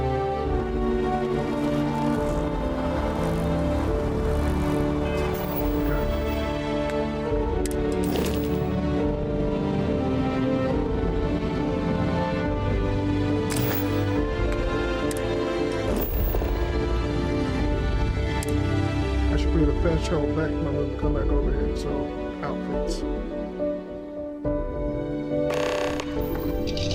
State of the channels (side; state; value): both; identical; correlation 1.00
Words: I should create a fast travel back when I'm gonna come back over here. So outfits.